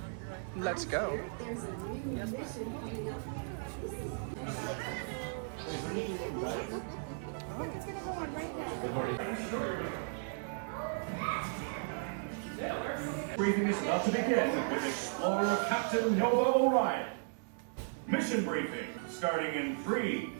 Let's go. Yes, it's gonna go on right now. Briefing is about to begin with Explorer Captain Nova Orion. Mission briefing starting in 3,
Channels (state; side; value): silent; left; 54 dB below the other